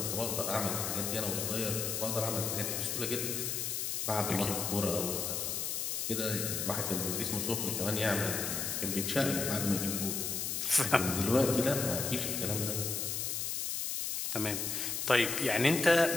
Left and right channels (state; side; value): noise; left; hiss, 1 dB below the sound